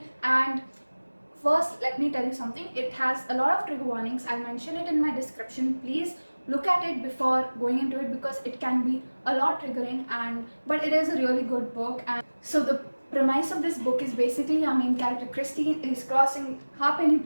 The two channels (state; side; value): inverted; both; correlation -1.00